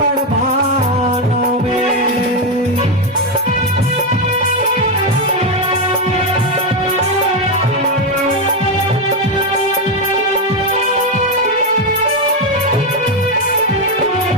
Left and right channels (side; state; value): both; normal; correlation 0.07